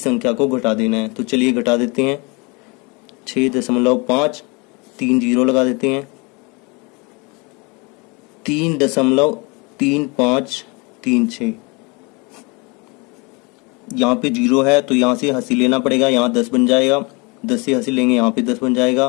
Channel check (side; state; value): right; quieter; 28.6 dB